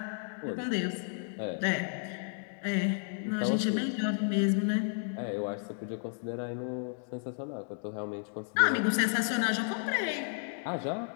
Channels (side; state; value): right; silent; 56 dB below the other